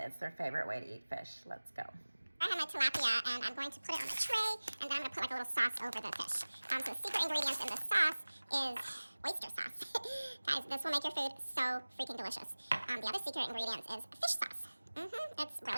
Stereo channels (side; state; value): both; inverted; correlation -1.00